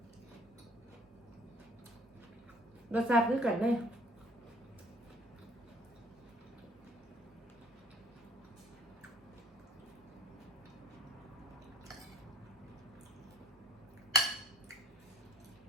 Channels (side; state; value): both; normal; correlation 0.55